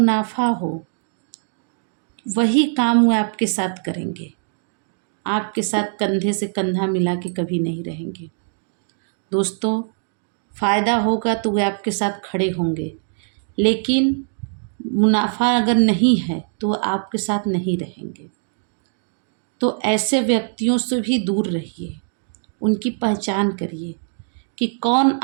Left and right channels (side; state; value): left; silent; digital silence